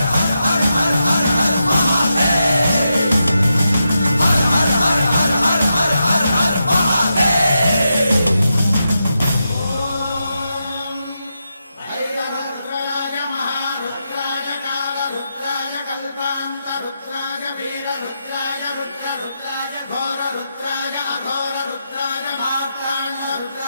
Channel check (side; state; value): both; inverted; correlation -0.86